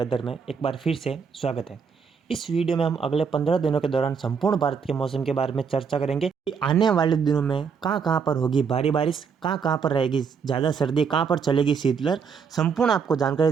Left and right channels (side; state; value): left; quieter; 6.1 dB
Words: में एक बार फिर से स्वागत है। इस वीडियो में हम अगले 15 दिनों के दौरान संपूर्ण भारत के मौसम के बारे में चर्चा करेंगे कि आने वाले दिनों में कहाँ पर होगी भारी बारिश, कहाँ पर रहेगी ज़्यादा सर्दी, कहाँ पर चलेगी शीतलहर। संपूर्ण आपको जानकारी